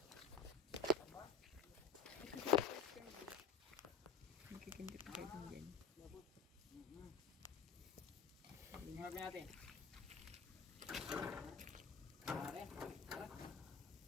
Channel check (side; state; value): right; quieter; 4.5 dB